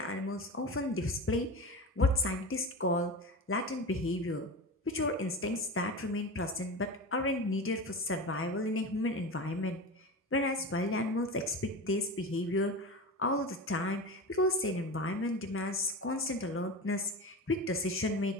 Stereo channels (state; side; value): normal; both; correlation 0.27